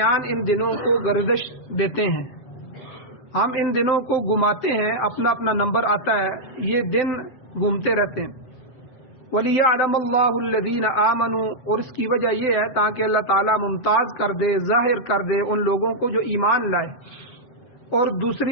ان دنوں کو گردش دیتے ہیں، ہم ان دنوں کو گھماتے ہیں، اپنا اپنا نمبر آتا ہے، یہ دن گھومتے رہتے ہیں۔ وَلِيَعْلَمَ اللَّهُ الَّذِينَ آمَنُوا، اور اس کی وجہ یہ ہے تاکہ اللہ تعالیٰ ممتاز کر دے، ظاہر کر دے ان لوگوں کو جو ایمان لائے۔ اور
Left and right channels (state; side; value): late; right; 7.8 ms